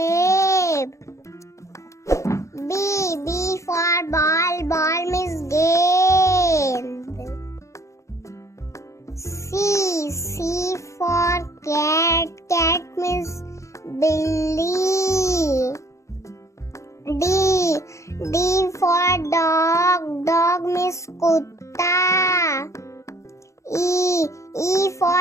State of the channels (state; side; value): late; right; 0.15 ms